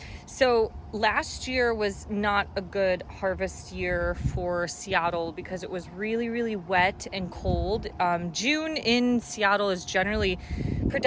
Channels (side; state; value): both; identical; correlation 1.00